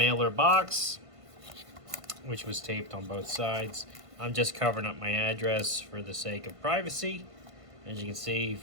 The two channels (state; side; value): late; left; 1.5 ms